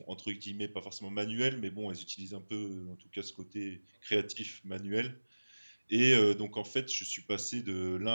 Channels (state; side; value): inverted; both; correlation -1.00